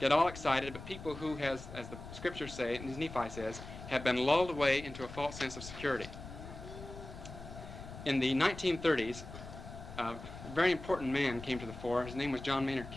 all excited, but people who, as the scriptures say, and as Nephi says, have been lulled away into a false sense of security. In the 1930s, a very important man came to the fore. His name was John Maynard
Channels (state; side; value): noise; left; rumble, 12 dB below the sound